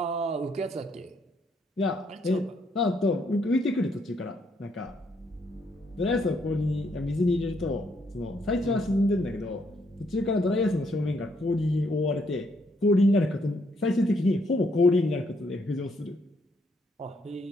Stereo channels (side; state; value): both; normal; correlation 0.73